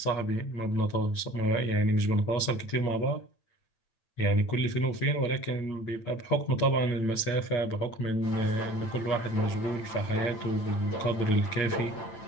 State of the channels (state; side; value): late; right; 8.9 ms